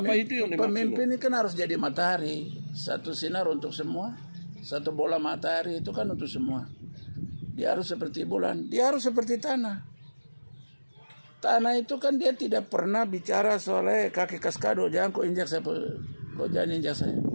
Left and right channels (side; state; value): both; inverted; correlation -1.00